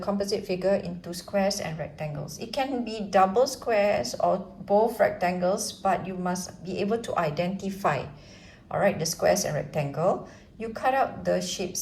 figure into squares and rectangles. It can be double squares or both rectangles, but you must be able to identify, all right, the squares and rectangle. You cut out the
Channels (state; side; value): identical; both; correlation 1.00